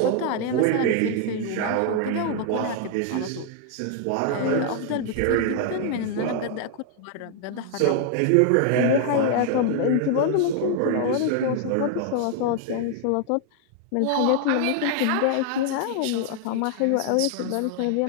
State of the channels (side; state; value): both; different; correlation 0.00